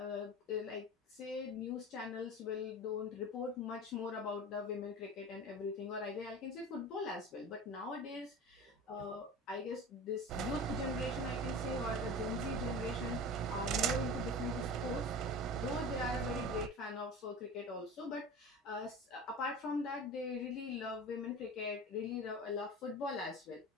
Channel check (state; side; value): normal; both; correlation 0.33